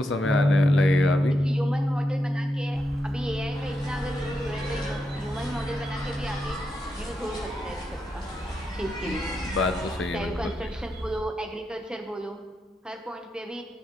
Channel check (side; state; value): both; normal; correlation 0.85